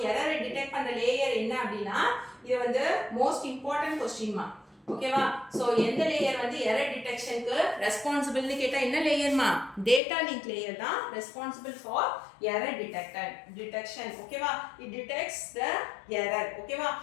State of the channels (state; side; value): drops out; right; at 10.0 s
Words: error டிடெக்ட் பண்ற லேயர் என்ன அப்படினா இது வந்து மோஸ்ட் இம்பார்ட்டன்ட் क्वेश्चन மா. ஓகேவா? சோ எந்த லேயர் வந்து எரர் டிடெக்ஷனுக்கு ரெஸ்பான்சிபிள்னு கேட்டா என்ன லேயர்மா? டேட்டா லிங்க் லேயர் தான் ரெஸ்பான்சிபிள் ஃபார் எரர் டிடெக்ஷன். ஓகேவா? It detects the error. ஓகேவா?